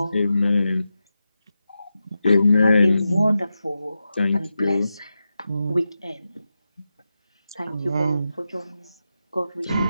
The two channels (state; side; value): inverted; both; correlation -0.91